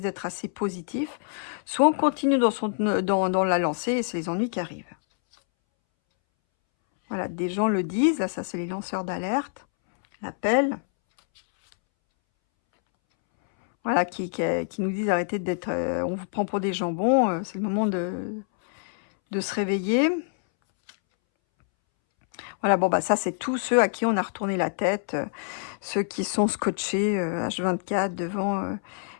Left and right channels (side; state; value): right; silent; 61 dB below the other